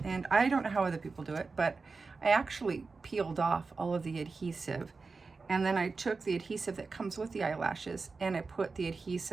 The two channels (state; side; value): quieter; left; 4.3 dB